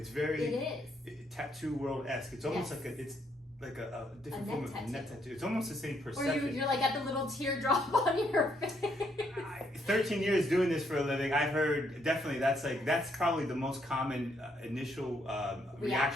very tattoo world-esque. It's almost like a different form of net tattoo. It's almost the same perception. Or you're like at the little teardrop on your face. 13 years doing this for a living, I've heard definitely that's probably the most common initial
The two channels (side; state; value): both; normal; correlation 0.73